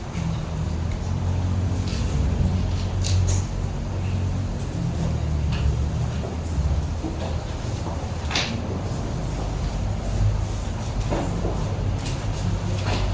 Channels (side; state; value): both; identical; correlation 1.00